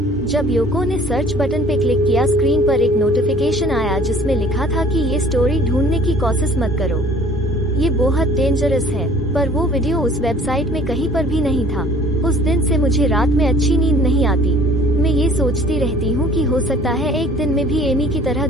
जब योको ने सर्च बटन पे क्लिक किया स्क्रीन पर एक नोटिफिकेशन आया जिसमें लिखा था कि ये स्टोरी ढूंढने की कोशिश मत करो, ये बहुत डेंजरस है। पर वो वीडियो उस वेबसाइट में कहीं पर भी नहीं था। उस दिन से मुझे रात में अच्छी नींद नहीं आती। मैं ये सोचती रहती हूँ कि हो सकता है एक दिन मैं भी एमी की तरह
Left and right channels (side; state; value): both; normal; correlation 0.52